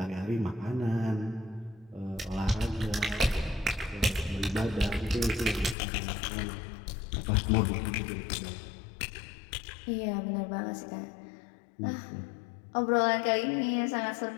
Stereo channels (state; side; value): drops out; right; at 5.8 s